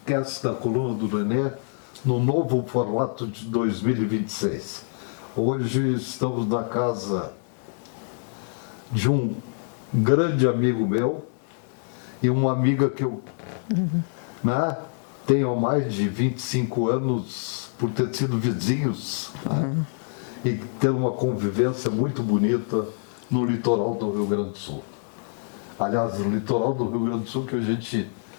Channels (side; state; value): right; silent; 61 dB below the other